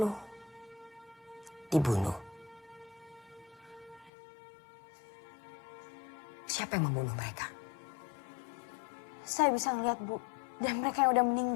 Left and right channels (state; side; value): drops out; right; at 4.1 s